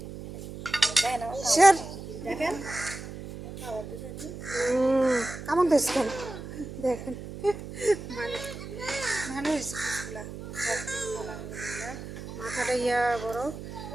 দেখেন আমার স্যার দেখেন কেমন দেখছেন দেখেন, মানে ভালো হয়েছে পিসগুলা। মাথাটা ইয়া বড়।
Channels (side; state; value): right; noise; hum, 10 dB below the sound